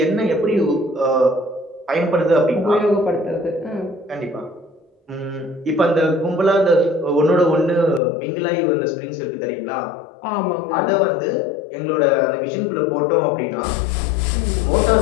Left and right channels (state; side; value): drops out; right; at 8.0 s